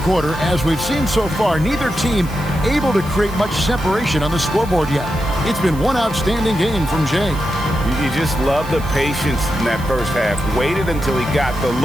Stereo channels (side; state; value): right; noise; hiss, 20 dB below the sound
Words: as we've seen so far, neither team able to create much separation on the scoreboard yet. It's been one outstanding game from Jay. You just love the patience in that first half. Waited until he got the